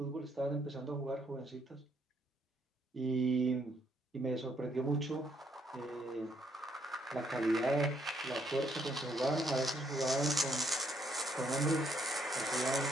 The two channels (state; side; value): normal; both; correlation 0.71